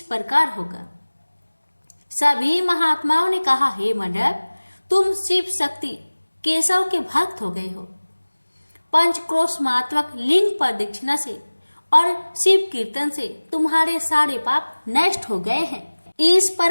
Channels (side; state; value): both; inverted; correlation -1.00